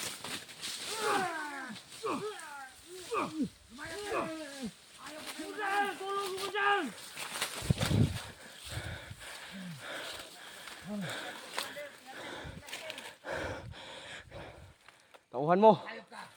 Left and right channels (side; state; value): both; identical; correlation 1.00